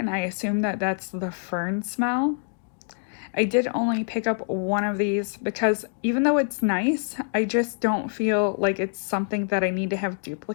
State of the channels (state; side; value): silent; right; digital silence